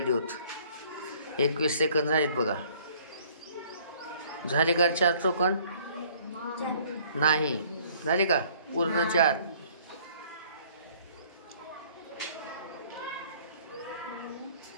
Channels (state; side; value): inverted; both; correlation -0.57